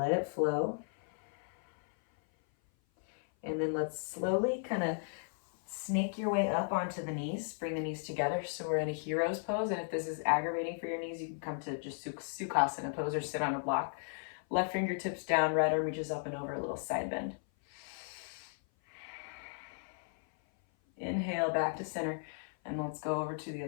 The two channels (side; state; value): right; silent; 54 dB below the other